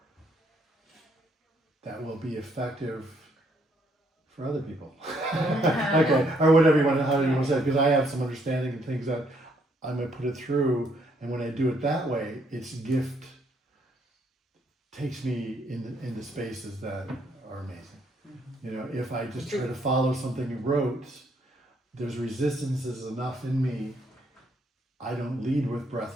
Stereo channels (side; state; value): both; normal; correlation 0.70